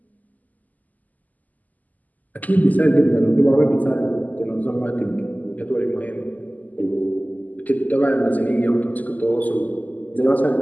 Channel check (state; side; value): late; right; 0.080 ms